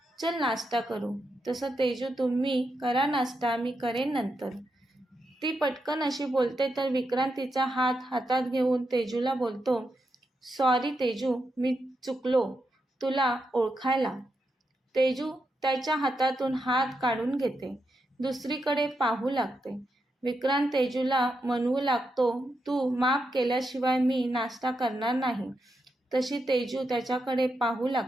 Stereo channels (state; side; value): normal; both; correlation 0.84